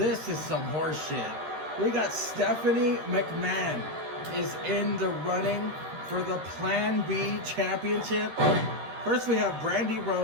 is some horse shit. We got Stephanie McMahon is in the running for the Plan B championship. First we have Brandy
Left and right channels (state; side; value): late; left; 13 ms